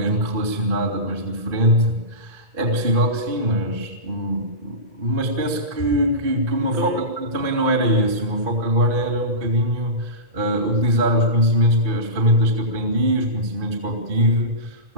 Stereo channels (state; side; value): late; left; 2.5 ms